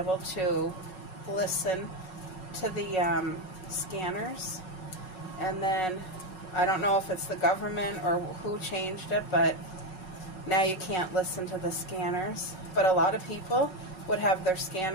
to listen to the scanners, and then I don't know if it's the government or who changed it, but now you can't listen to the scanners. But a lot of people would have their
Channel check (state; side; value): late; right; 5.4 ms